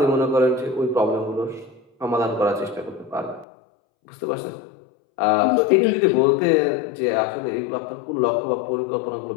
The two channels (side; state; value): right; drops out; at 3.5 s